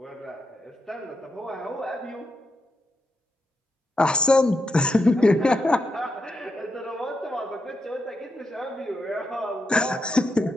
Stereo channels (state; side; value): normal; both; correlation 0.84